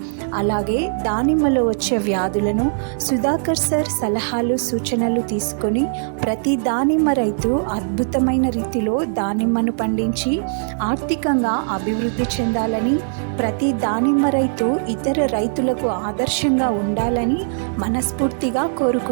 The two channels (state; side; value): silent; left; digital silence